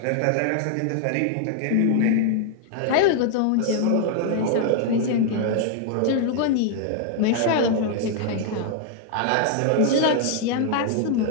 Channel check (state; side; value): different; both; correlation 0.00